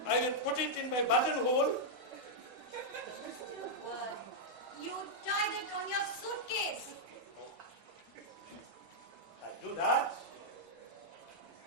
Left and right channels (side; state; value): right; late; 1.5 ms